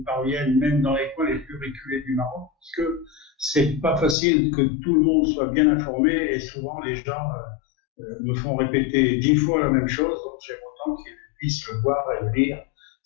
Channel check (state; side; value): drops out; right; at 4.2 s